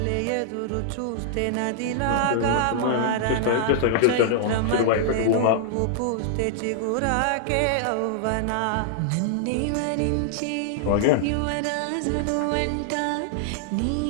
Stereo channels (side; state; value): both; different; correlation -0.01